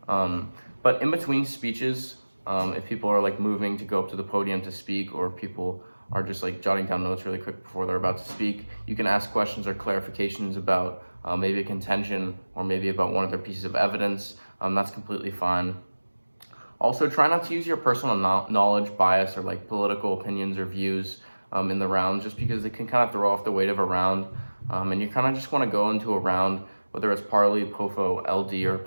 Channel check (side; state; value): both; inverted; correlation -1.00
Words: But in between speeches, if people are like moving to go up to the podium to speak, or people are just like jotting down notes really quick before they're about to speak, you can ask questions or clarifications about maybe a contention or maybe about one of their pieces of evidence. That's completely fine. Also, try not to use your personal knowledge, bias, or like political opinions or views in the round, just because it can kind of throw off the weight of a round. And you kind of just want to go into a round, whether it's parley, POFO, LD, or